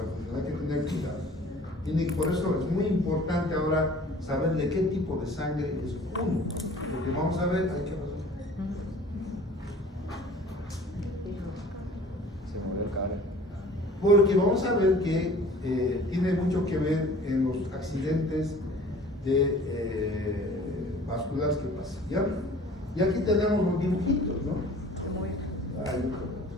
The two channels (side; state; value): both; normal; correlation 0.48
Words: hay que tener cuidado. Por eso es muy importante ahora saber de qué tipo de sangre es uno. Porque vamos a ver, hay que pasar. Porque vamos a ver que tiene mucho que ver en los accidentes vasculares que pasan. ¿Ya? Y aquí tenemos los dibujitos, ¿no? Ay,